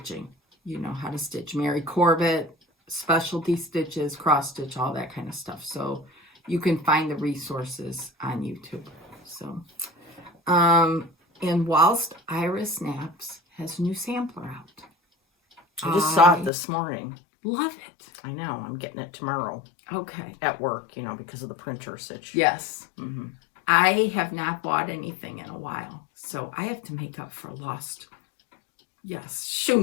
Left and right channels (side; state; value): right; drops out; at 16.5 s